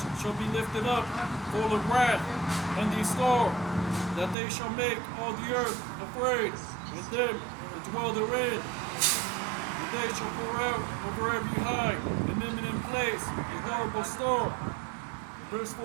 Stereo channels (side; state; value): left; drops out; at 4.4 s